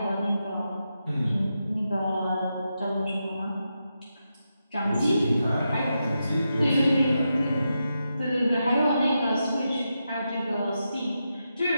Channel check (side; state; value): both; inverted; correlation -0.87